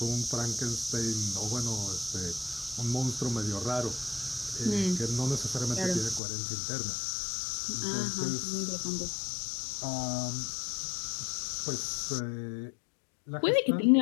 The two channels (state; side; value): drops out; right; at 6.2 s